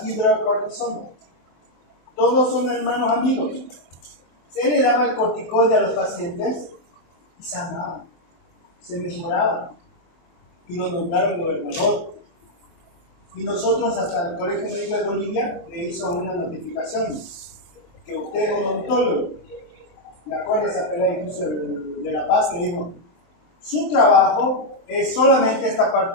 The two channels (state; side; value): late; right; 24 ms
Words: hidrocortisona. Todos son hermanos amigos. Se le daba el corticoide a los pacientes y sanaban, se mejoraban y lo nombraron gobernador. Y nosotros hasta el Colegio Médico de Bolivia le hizo una notificación que usted es odontólogo. Me acuerdo esa pelea incluso de La Paz, que dijo, su trabajo es solamente esta